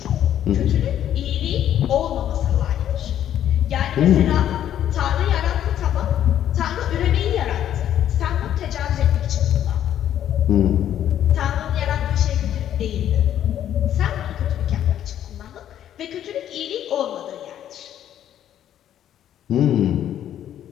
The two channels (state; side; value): quieter; right; 10.8 dB